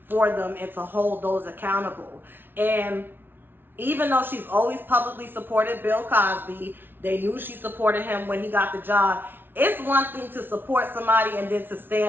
for them and to hold those accountable. And even though she's always publicly supported Bill Cosby, they knew she supported him when he got the job. It's one thing to support somebody and then to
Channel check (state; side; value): late; left; 0.10 ms